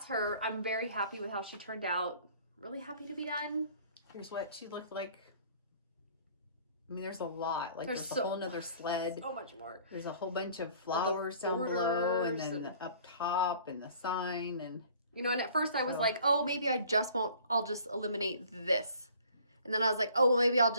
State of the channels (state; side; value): inverted; both; correlation -0.54